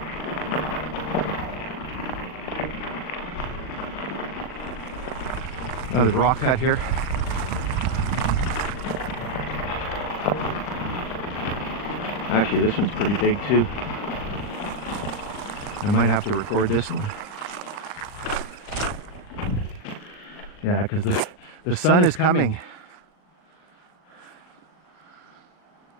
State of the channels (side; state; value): right; late; 39 ms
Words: Another rock cut here. Actually, this one's pretty big too. I might have to record this one. Yeah, because the sun is coming.